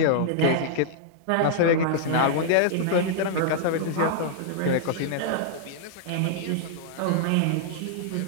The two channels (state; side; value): different; both; correlation -0.01